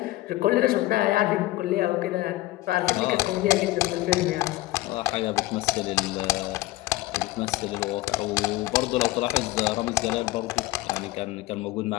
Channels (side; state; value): right; quieter; 17.7 dB